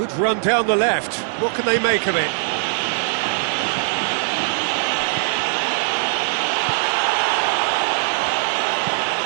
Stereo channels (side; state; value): left; silent; digital silence